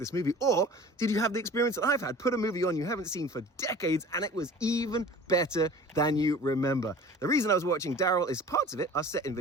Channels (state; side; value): normal; both; correlation 0.43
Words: movie. Or did you have the experience that I've had? Put a movie on you haven't seen for decades and it was even better than you remember. The reason I was watching Daryl is parts of it are set in